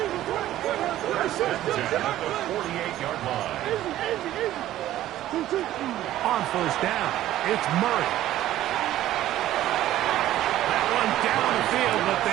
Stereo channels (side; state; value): left; quieter; 13.7 dB